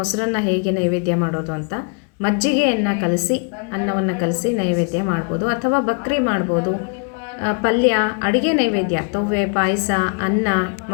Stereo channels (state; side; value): quieter; right; 34.6 dB